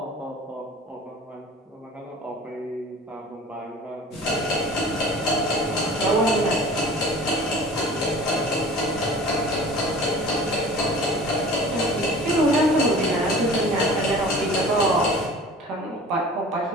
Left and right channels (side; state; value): both; normal; correlation 0.42